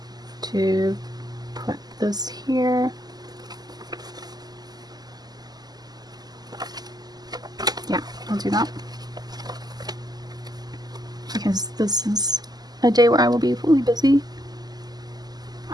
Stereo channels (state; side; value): late; left; 0.20 ms